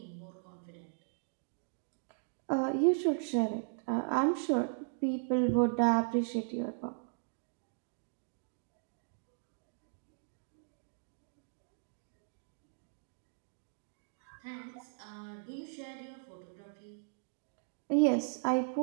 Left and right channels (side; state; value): left; silent; digital silence